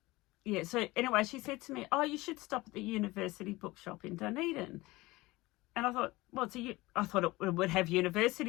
Yeah, so anyway, she said to me, oh, you should stop at the university bookshop in Dunedin. And I thought, well, I thought it would have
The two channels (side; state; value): right; quieter; 20.6 dB